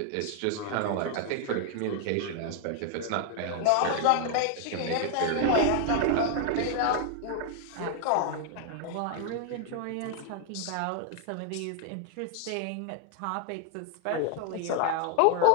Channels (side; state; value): both; different; correlation 0.00